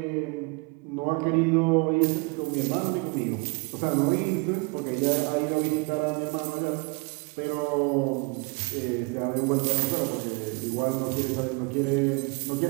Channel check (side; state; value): left; quieter; 29.8 dB